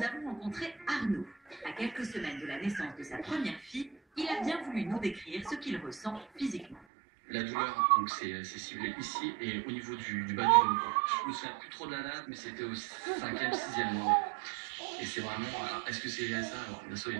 avons rencontré Arnaud. À quelques semaines de la naissance de sa première fille, il a bien voulu nous décrire ce qu'il ressent physiquement. La douleur, donc c'est ciblé ici et au niveau du bas du ventre. Je me souviens plus trop de la date, mais c'était au 5e, 6e mois. Et c'est vraiment, alors, est-ce que c'est lié à ça? Alors, bien sûr, il y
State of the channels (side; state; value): left; drops out; at 6.8 s